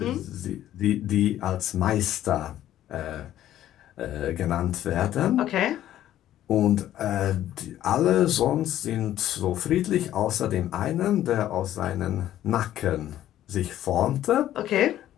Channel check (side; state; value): right; quieter; 12.5 dB